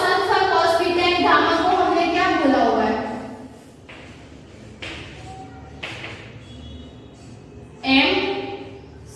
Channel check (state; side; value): identical; both; correlation 1.00